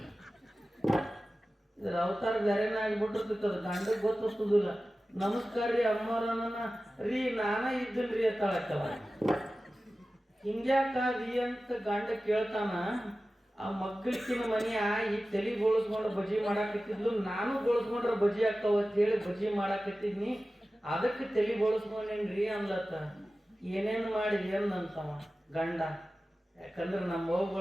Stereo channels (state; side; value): normal; both; correlation 0.95